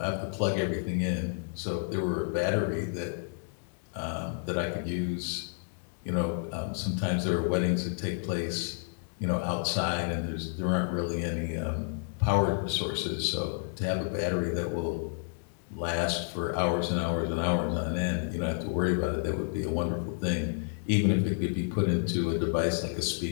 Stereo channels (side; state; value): right; silent; digital silence